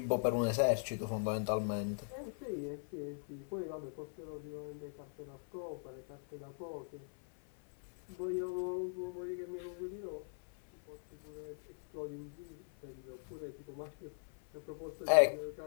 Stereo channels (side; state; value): right; silent; 51 dB below the other